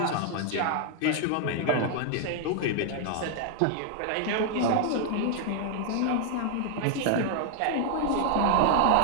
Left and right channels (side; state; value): both; different; correlation 0.00